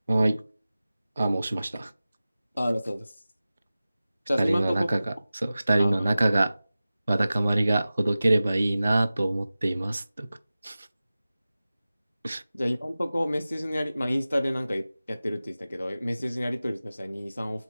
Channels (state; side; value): inverted; both; correlation -0.96